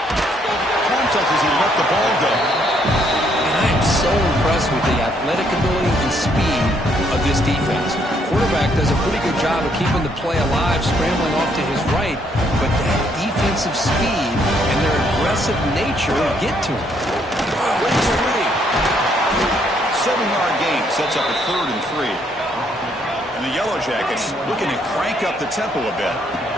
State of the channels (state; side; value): normal; both; correlation 0.70